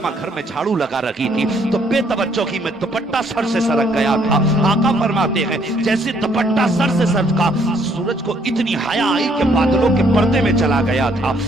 घर में झाड़ू लगा रही थी तो बेतवज्जो की मैं दुपट्टा सर से सरक गया था। आका फरमाते हैं जैसे दुपट्टा सर से सरका, सूरज को इतनी हया आई कि बादलों के पर्दे में चला गया था।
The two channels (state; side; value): normal; both; correlation 0.66